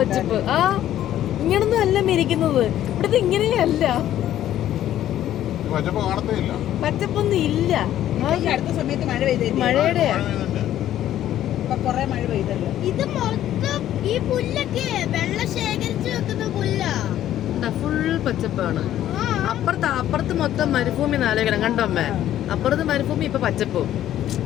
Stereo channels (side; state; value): right; quieter; 12.2 dB